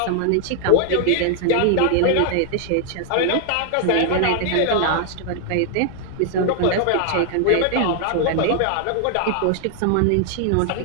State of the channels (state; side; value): different; both; correlation 0.00